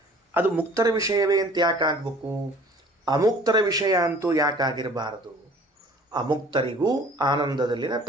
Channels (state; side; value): normal; both; correlation 0.50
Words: ಅದು ಮುಕ್ತರ ವಿಷಯವೇ ಅಂತ ಯಾಕಾಗಬೇಕು, ಅಮುಕ್ತರ ವಿಷಯ ಅಂತೂ ಯಾಕಾಗಿರಬಾರದು, ಅಮುಕ್ತರಿಗೂ ಆನಂದದಲ್ಲಿನ